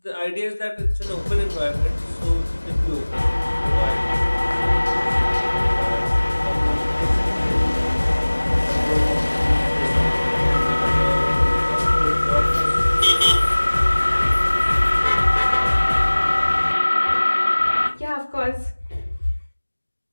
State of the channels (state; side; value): inverted; both; correlation -1.00